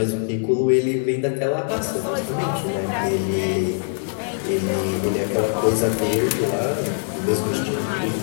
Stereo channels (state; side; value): silent; right; digital silence